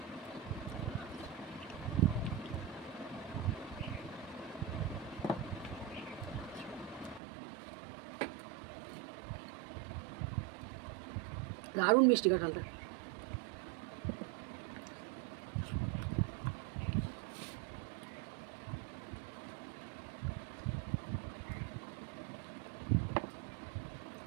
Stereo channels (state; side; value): drops out; left; at 7.2 s